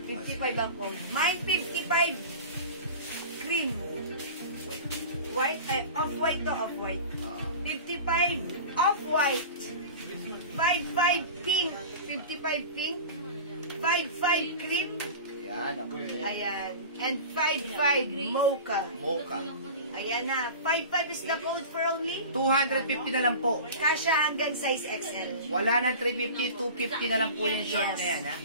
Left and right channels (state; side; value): inverted; both; correlation -0.34